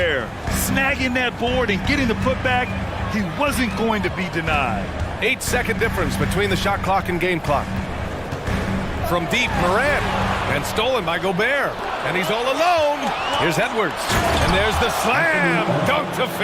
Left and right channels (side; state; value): both; identical; correlation 1.00